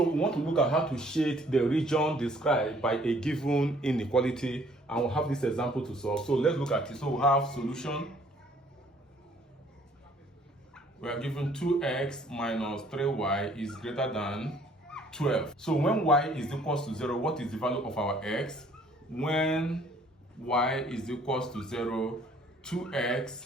we want to look at how to shade the region described by a given inequality, and we'll have this example to solve. So let's look at it. So we have solution. We are given 2x minus 3y is greater than 12. So when y is equals to 0, what is the value of our x? When y is equals to 0, 2x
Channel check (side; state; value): both; normal; correlation 0.60